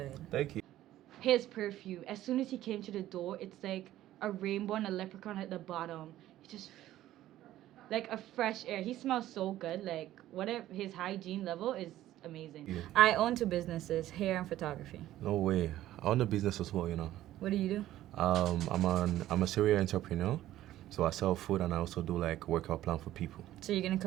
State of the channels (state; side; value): quieter; left; 13.9 dB